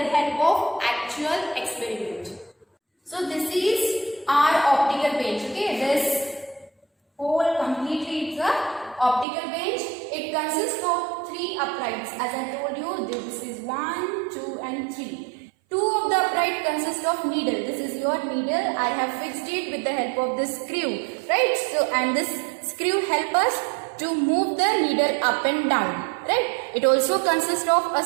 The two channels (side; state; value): left; drops out; at 9.2 s